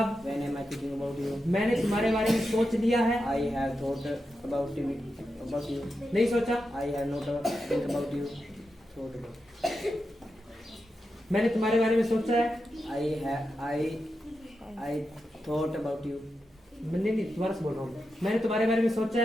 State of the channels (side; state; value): both; normal; correlation 0.88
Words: When am I thinking about you? मैंने तुम्हारे बारे में सोच लिया है। I have thought about you. नहीं सोचा? I have not think about you. Thought about. मैंने तुम्हारे बारे में सोचा है। I thought about you. नहीं दोबारा से बोल रहा हूँ। मैंने तुम्हारे बारे में सोचा